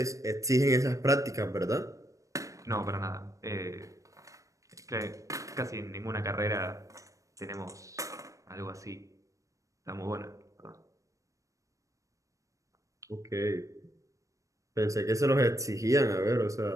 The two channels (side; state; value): left; late; 0.16 ms